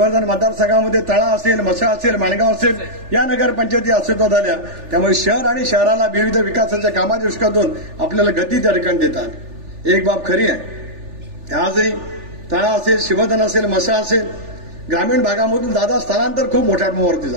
मतदारसंघामध्ये तळा असेल, मसा असेल, माणगाव असेल या नगरपंचायती अस्तित्वात आल्या. त्यामुळे शहर आणि शहराला विविध विकासाच्या कामाच्या दृष्टिकोनातून आपल्याला गती त्या ठिकाणी देतात. एक बाब खरी आहे, आजही तळा असेल, शिवर्धन असेल, मसा असेल, ग्रामीण भागामधून दादा स्थलांतर खूप मोठ्या प्रमाणावरती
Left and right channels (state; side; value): late; left; 3.4 ms